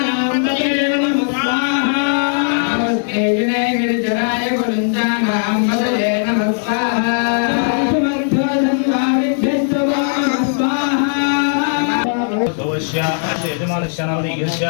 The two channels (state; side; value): silent; right; digital silence